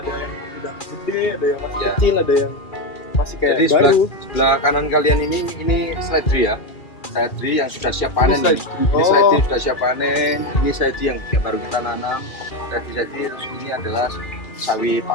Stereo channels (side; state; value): right; late; 2.4 ms